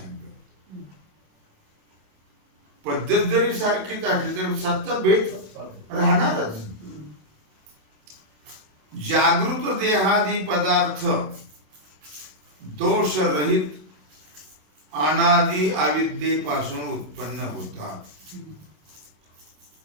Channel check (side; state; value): left; late; 27 ms